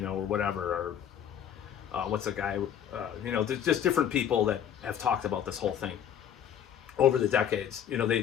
whatever, or what's a guy, there's just different people that have talked about this whole thing over the decades.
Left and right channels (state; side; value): quieter; right; 9.3 dB